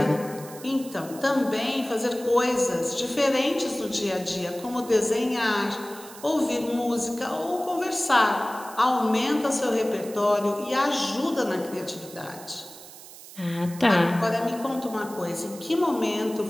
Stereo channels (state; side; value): noise; right; hiss, 17 dB below the sound